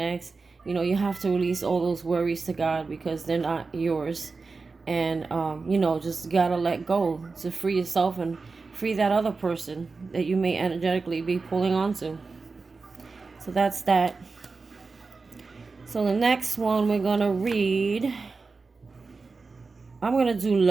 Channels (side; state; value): left; quieter; 4.2 dB